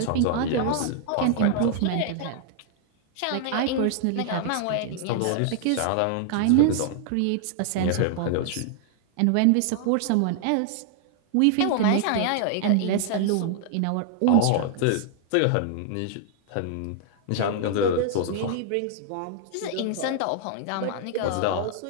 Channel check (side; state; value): both; different; correlation -0.01